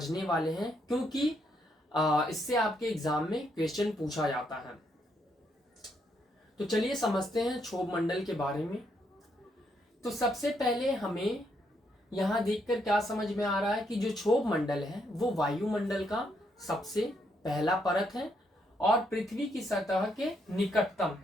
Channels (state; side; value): normal; both; correlation 0.75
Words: वाले हैं, क्योंकि इससे आपके एग्जाम में क्वेश्चन पूछा जाता है। तो चलिए समझते हैं क्षोभ मंडल के बारे में। तो सबसे पहले हमें यहां देखकर क्या समझ में आ रहा है कि जो क्षोभ मंडल है वो वायुमंडल का सबसे पहला परत है और पृथ्वी की सतह के निकटतम।